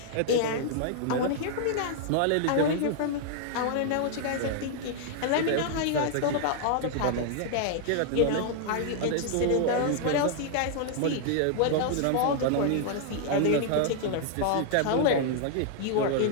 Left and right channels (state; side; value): different; both; correlation -0.01